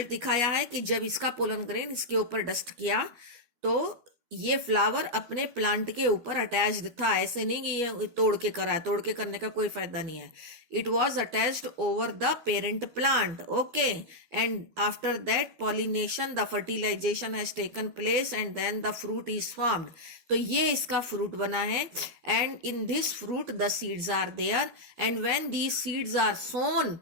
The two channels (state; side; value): late; left; 12 ms